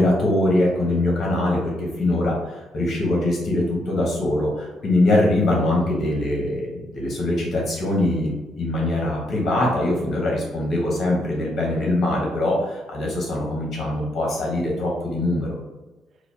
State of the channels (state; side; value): normal; both; correlation 0.77